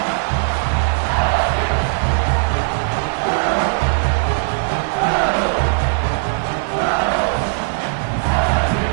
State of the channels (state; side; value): silent; left; digital silence